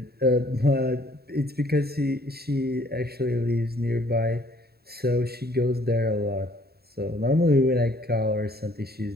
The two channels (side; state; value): left; late; 0.46 ms